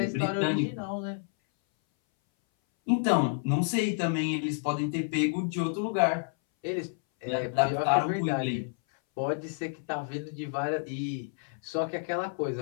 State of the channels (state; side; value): silent; right; 58 dB below the other